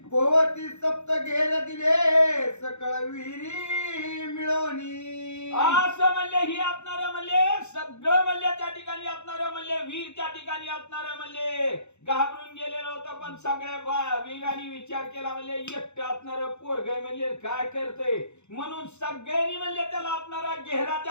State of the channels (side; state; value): right; late; 0.82 ms